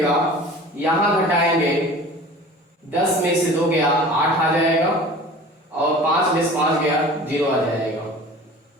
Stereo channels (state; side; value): normal; both; correlation 0.42